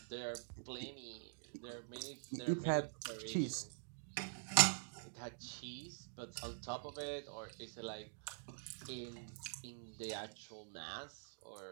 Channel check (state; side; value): silent; left; digital silence